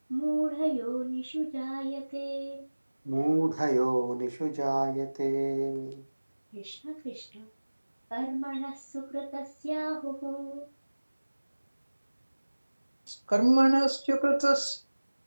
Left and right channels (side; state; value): both; inverted; correlation -1.00